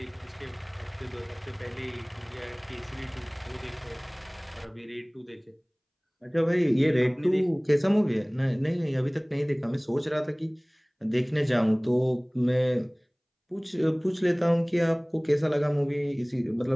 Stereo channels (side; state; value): both; identical; correlation 1.00